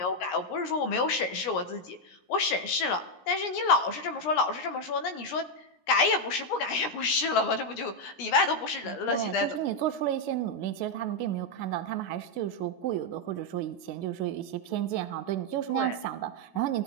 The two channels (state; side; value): late; right; 17 ms